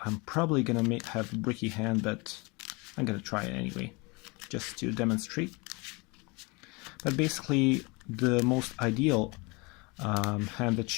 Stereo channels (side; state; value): right; quieter; 27.8 dB